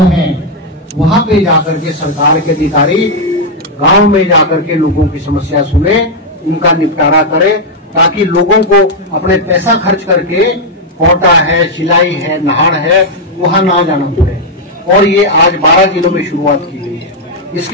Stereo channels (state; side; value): normal; both; correlation -0.01